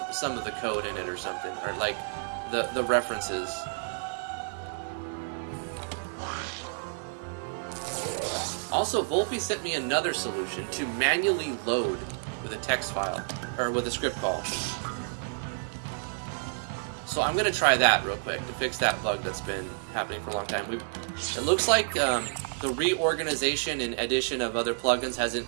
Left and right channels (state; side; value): silent; left; digital silence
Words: of the code in it or something, or like the references. Also, Volpe sent me another solution to manually load with a text file, or with a script call. So I'm going to try that real quick to fix that bug that's been happening for a long time. It looks like the reorganization and addition of other plugins hasn't